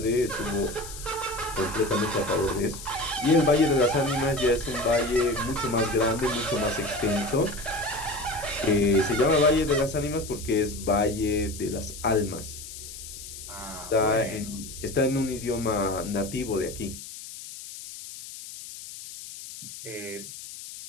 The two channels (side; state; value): left; noise; hiss, 12 dB below the sound